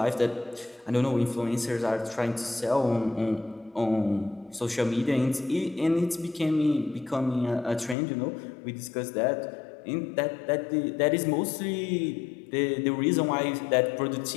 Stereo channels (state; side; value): drops out; right; at 8.0 s